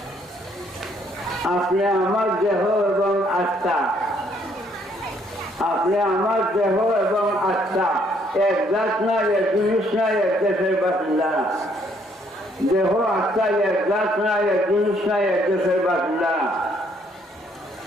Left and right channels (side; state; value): both; normal; correlation 0.67